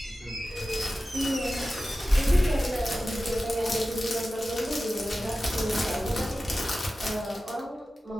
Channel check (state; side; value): normal; both; correlation 0.95